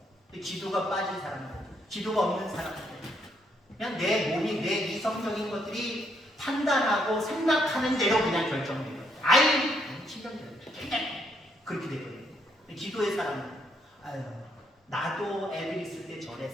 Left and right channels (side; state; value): both; normal; correlation 0.73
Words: 근데 기도가 빠진 사람들, 기도가 없는 사람들, 그냥 내 몸이 내 이성적인 것들이 판단하고 생각하는 대로 그냥 결정돼요. 아이, 신경질 그렇게 되거든요. 기도의 사람은 아유, 나도 애들 있을 때